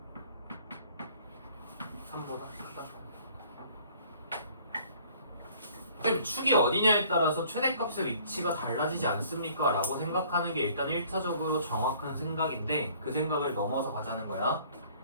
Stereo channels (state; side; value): inverted; both; correlation -0.56